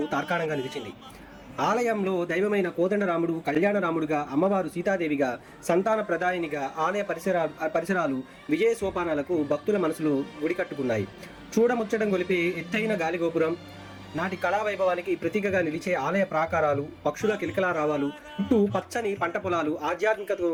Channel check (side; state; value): both; identical; correlation 1.00